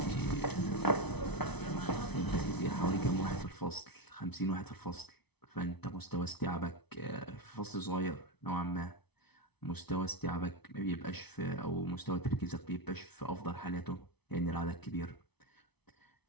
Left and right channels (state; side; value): late; right; 0.99 ms